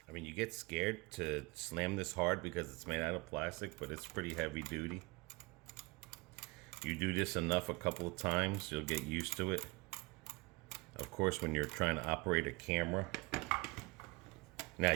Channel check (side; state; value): left; quieter; 25.1 dB